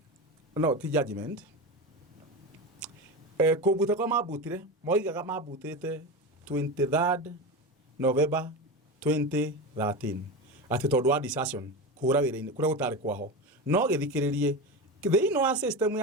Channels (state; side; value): normal; both; correlation 0.21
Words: no ti judgment kubuta kwa mabutire moigaga mabutite 23rd November 2013 ati tondu wa decision kura wira-ini kura gutari kwaho no githikiririe thiini wa system